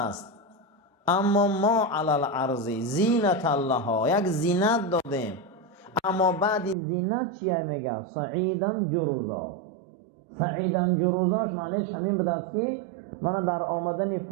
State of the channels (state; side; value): drops out; left; at 6.8 s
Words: اما ما علال عرضی زینت الله، یک زینت دادیم. اما بعد زینت چیه میگه؟ سعیدن جروزا. سعیدن جروزاش معنیش همین بده است که من در آمدن